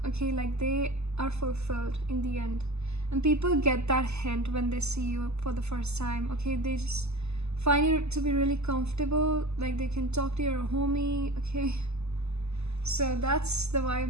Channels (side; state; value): left; late; 0.80 ms